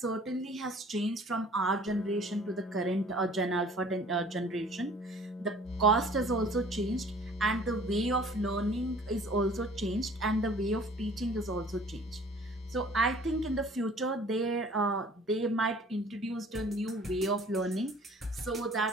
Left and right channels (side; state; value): both; normal; correlation 0.51